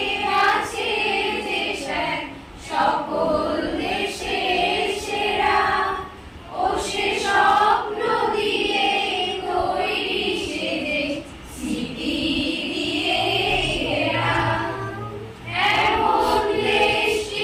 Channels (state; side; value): identical; both; correlation 1.00